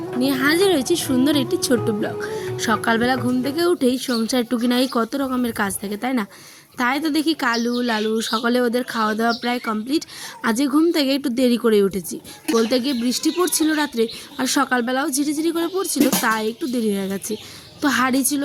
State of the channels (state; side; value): identical; both; correlation 1.00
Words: নিয়ে হাজির হয়েছি সুন্দর একটি ছোট্ট ব্লগ। সকালবেলা ঘুম থেকে উঠেই সংসার টুকিনাই কত রকমের কাজ থাকে, তাই না? তাই তো দেখি কালু লালু সকালে ওদের খাওয়া দাওয়া প্রায় কমপ্লিট। আজকে ঘুম থেকে একটু দেরি করে উঠেছি, বলতে গিয়ে বৃষ্টি পড়ছিল রাত্রে, আর সকালবেলাও ঝিরিঝিরি করে পড়ছিল, তাই একটু দেরি হয়ে গেছে। তো হাঁড়ি ছিল